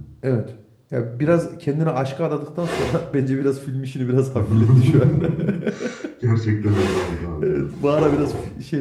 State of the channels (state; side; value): identical; both; correlation 1.00